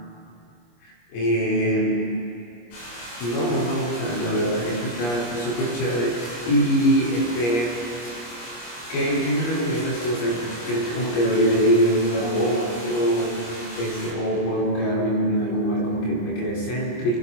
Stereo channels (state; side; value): late; right; 25 ms